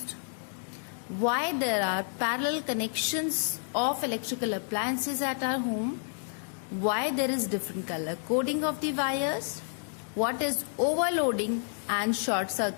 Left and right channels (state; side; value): silent; right; digital silence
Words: why there are parallel connections of electrical appliances at our home, why there is different color coding of the wires, what is overloading and short